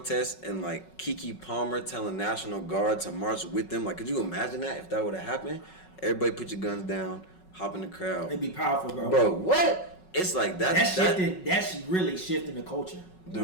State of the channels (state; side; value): late; right; 5.4 ms